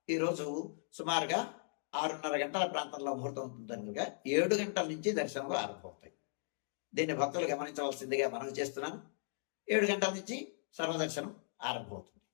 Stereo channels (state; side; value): silent; right; digital silence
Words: ఈరోజు సుమారుగా 6:30 గంటల ప్రాంతంలో ముహూర్తం ఉంటుందనుగా 7 గంటల నుంచి దర్శనాలు ఆరంభమవుతాయి. దీన్ని భక్తులు గమనించవలసిందిగా మనవి చేస్తున్నాను. 7 గంటల నుంచి సర్వదర్శనం ఆరంభమవుతుంది.